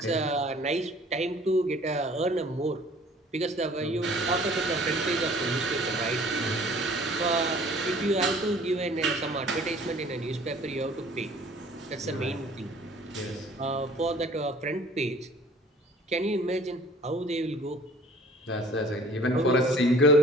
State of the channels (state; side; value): normal; both; correlation 0.51